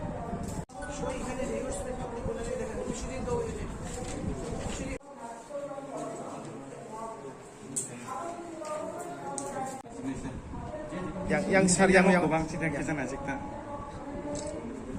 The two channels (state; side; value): identical; both; correlation 1.00